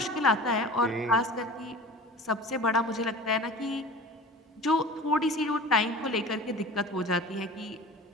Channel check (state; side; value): normal; both; correlation 0.38